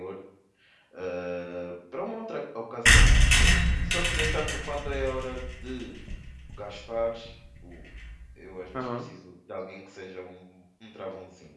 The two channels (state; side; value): identical; both; correlation 1.00